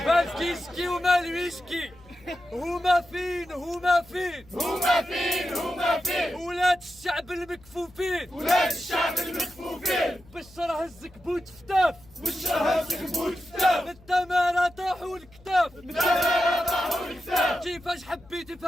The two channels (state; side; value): noise; left; hum, 25 dB below the sound